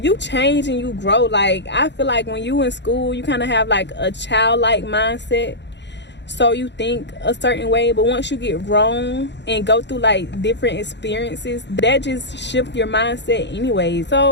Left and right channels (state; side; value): late; right; 0.51 ms